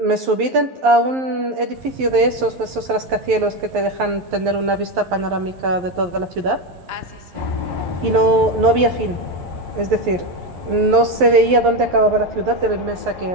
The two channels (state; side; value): late; left; 11 ms